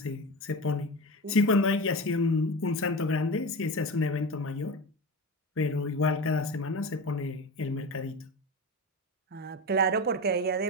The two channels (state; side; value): normal; both; correlation 0.25